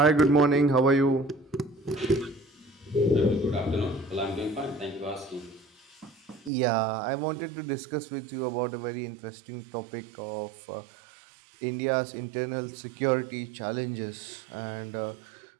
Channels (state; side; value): drops out; left; at 6.5 s